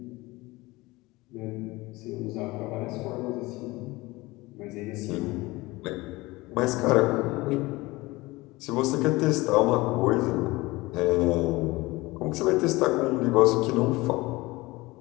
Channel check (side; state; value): right; quieter; 21.2 dB